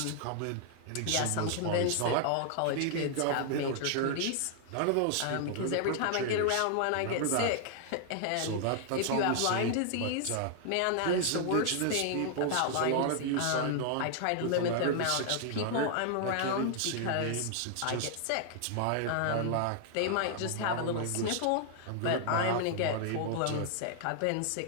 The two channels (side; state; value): both; different; correlation 0.00